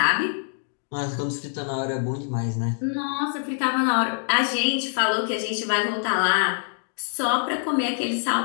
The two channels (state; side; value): silent; right; 62 dB below the other